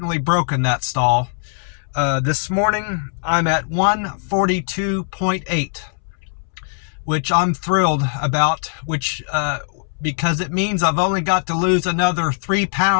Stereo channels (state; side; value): silent; right; 66 dB below the other